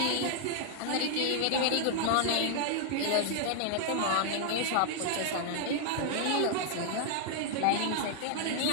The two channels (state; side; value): different; both; correlation -0.01